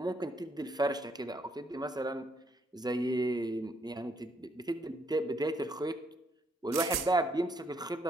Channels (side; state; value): both; normal; correlation 0.71